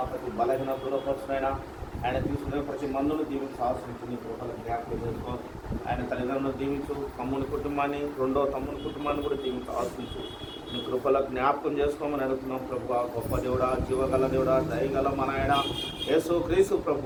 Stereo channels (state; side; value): identical; both; correlation 1.00